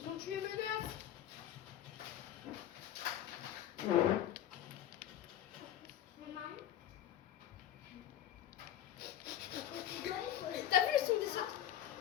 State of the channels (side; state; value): right; quieter; 11.2 dB